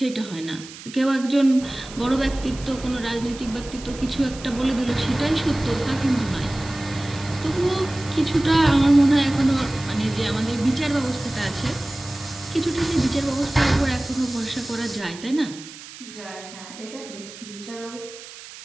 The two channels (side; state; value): right; noise; hiss, 16 dB below the sound